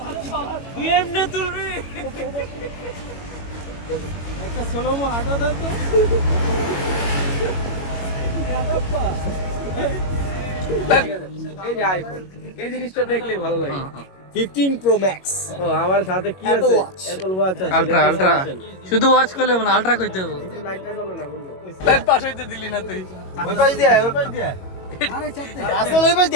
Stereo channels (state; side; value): late; right; 21 ms